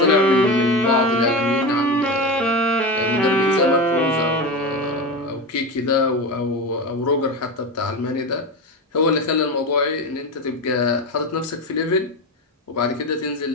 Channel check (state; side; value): normal; both; correlation 0.21